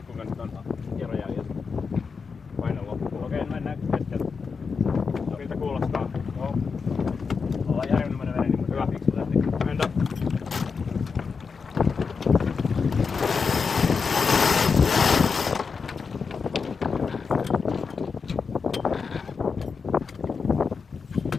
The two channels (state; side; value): quieter; right; 5.3 dB